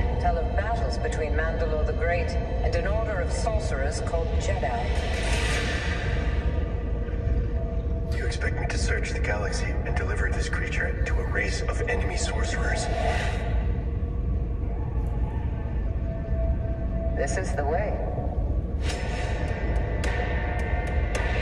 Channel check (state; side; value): identical; both; correlation 1.00